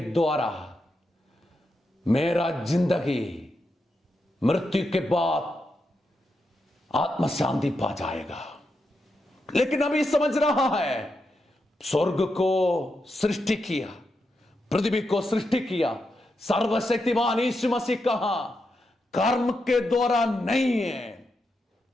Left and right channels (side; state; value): both; normal; correlation 0.85